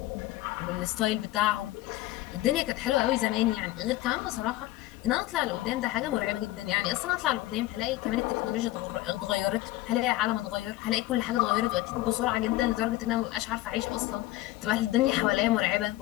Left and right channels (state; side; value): quieter; right; 16.7 dB